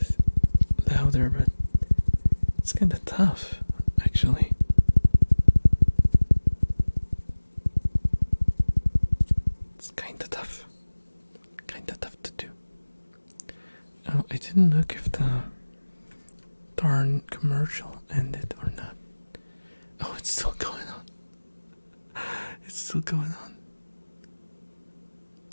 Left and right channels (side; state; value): both; inverted; correlation -1.00